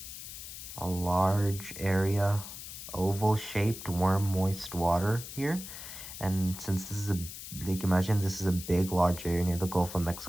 A large area, oval-shaped, warm, moist water here. And since this is like imagine this is a big, large area near the Gulf of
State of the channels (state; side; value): noise; left; hiss, 11 dB below the sound